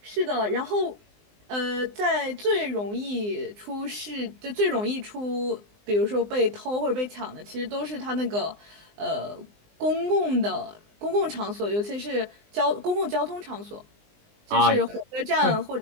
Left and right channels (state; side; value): late; left; 19 ms